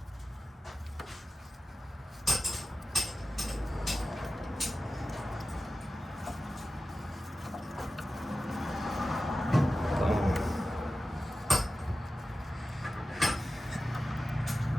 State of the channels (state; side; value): normal; both; correlation 0.94